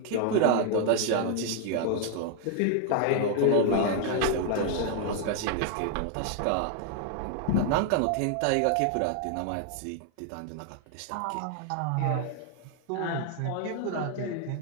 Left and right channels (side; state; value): both; different; correlation 0.00